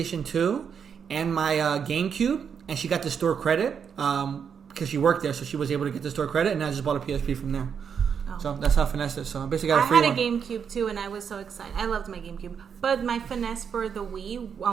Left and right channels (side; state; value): left; quieter; 7.1 dB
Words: 2 and my GameCube, and she got the store credit because she worked there, so she was able to get the store credit, and I just bought a PSP from there. Oh. So that's how I finessed it. So I basically I got a free had a one. GameCube too, and I was so excited. I loved my GameCube. But my finesse for the Wii,